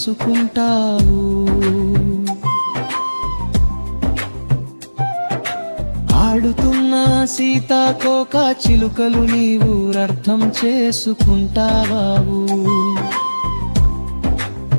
ఆడుతున్న సీతాకోక చిలుకలు నీవు అర్థం చేసుకుంటావు.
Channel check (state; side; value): inverted; both; correlation -1.00